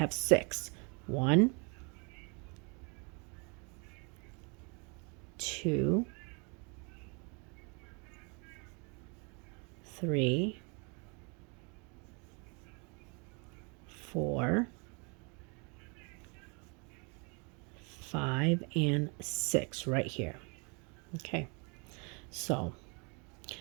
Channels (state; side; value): quieter; left; 33.0 dB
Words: 6. 1, 2, 3, 4, 5, and 6 right here. Okay, so